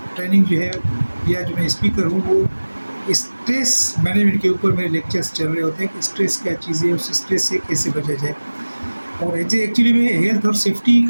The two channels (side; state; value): both; inverted; correlation -1.00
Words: ट्रेनिंग जो है या जो मैं स्पीकर हूँ वो स्ट्रेस मैनेजमेंट के ऊपर मेरे लेक्चर्स चल रहे होते हैं कि स्ट्रेस क्या चीज़ है, उस स्ट्रेस से कैसे बचा जाए। और एक्चुअली मैं हेल्थ और सेफ्टी